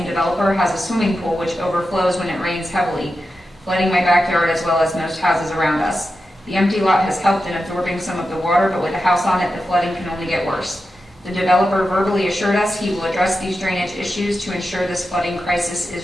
developer, has a swimming pool which overflows when it rains heavily, flooding my backyard as well as most houses around us. The empty lot has helped in absorbing some of the water, but with a house on it, the flooding can only get worse. The developer verbally assured us he will address these drainage issues to ensure this flooding crisis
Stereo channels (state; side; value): normal; both; correlation 0.90